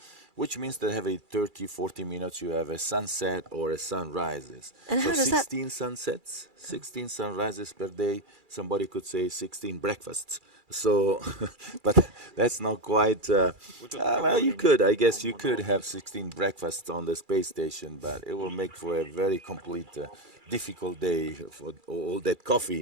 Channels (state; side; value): late; left; 2.3 ms